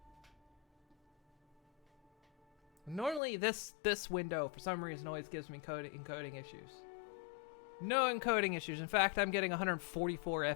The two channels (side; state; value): right; drops out; at 3.2 s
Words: Normally this window, for some reason, always gives me encoding issues. No encoding issues. In fact, I'm getting 144